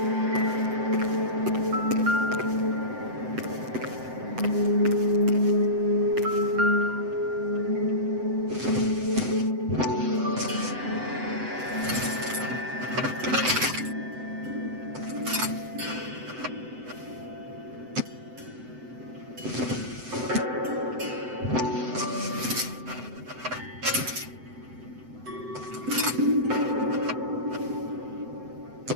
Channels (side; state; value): left; late; 7.8 ms